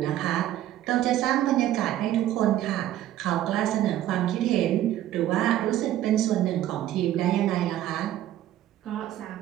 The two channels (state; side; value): quieter; left; 13.0 dB